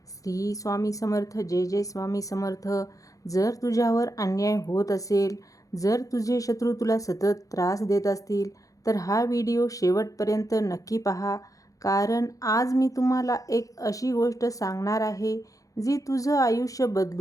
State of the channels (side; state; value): right; late; 0.17 ms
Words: श्री स्वामी समर्थ. जय जय स्वामी समर्थ. जर तुझ्यावर अन्याय होत असेल, जर तुझे शत्रू तुला सतत त्रास देत असतील, तर हा व्हिडिओ शेवटपर्यंत नक्की पहा. कारण आज मी तुम्हाला एक अशी गोष्ट सांगणार आहे जी तुझं आयुष्य